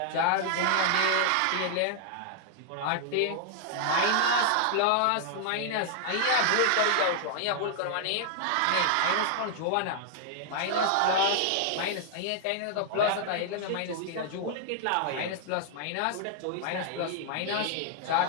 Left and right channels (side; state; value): both; different; correlation -0.01